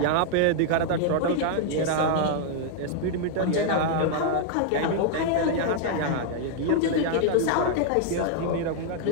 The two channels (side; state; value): both; different; correlation 0.00